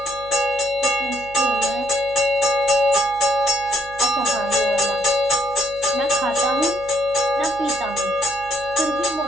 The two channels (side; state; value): right; noise; hum, 22 dB below the sound